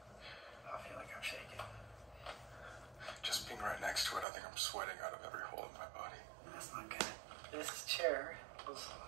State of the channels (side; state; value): left; drops out; at 4.2 s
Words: I feel like I'm shaking. Just being right next to it, I think I'm sweating out of every hole in my body. That's not good. This chair was